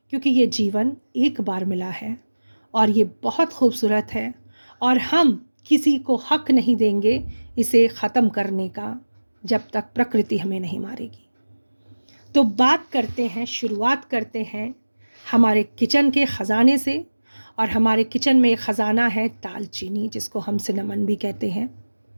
क्योंकि ये जीवन एक बार मिला है और ये बहुत खूबसूरत है, और हम किसी को हक नहीं देंगे इसे ख़त्म करने का जब तक प्रकृति हमें नहीं मारेगी। तो बात करते हैं, शुरुआत करते हैं हमारे किचन के ख़जाने से, और हमारे किचन में एक ख़जाना है दालचीनी, जिसको हम सिनेमन भी कहते हैं।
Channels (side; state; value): both; inverted; correlation -1.00